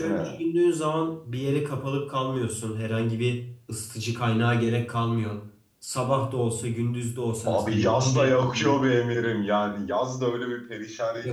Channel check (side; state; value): both; identical; correlation 1.00